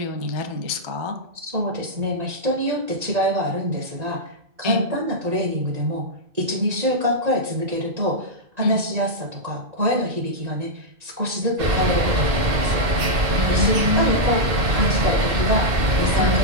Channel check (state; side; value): late; left; 1.9 ms